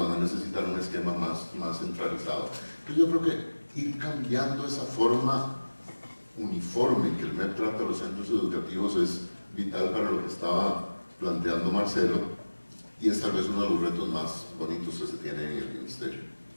a necesitar un esquema más centralizado. Entonces yo creo que ir cambiando esa forma uniforme en que el MEP trata a los centros educativos es vital para lo que estaba planteando Marcelo, y es tal vez uno de los retos más bonitos que se tiene en el Ministerio.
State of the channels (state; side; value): inverted; both; correlation -1.00